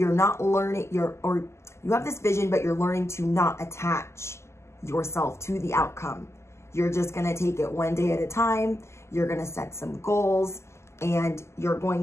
not learning you have this vision, but you're learning to not attach yourself to the outcome. You're just going to take it one day at a time. You're going to set some goals, and you're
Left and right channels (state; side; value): late; right; 0.13 ms